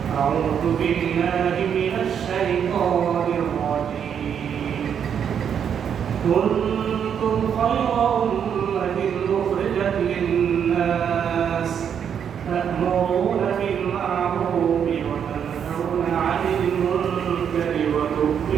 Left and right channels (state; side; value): quieter; left; 8.0 dB